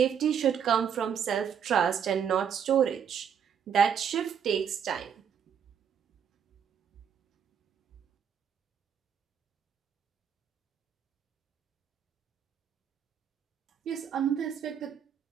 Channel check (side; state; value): left; quieter; 7.8 dB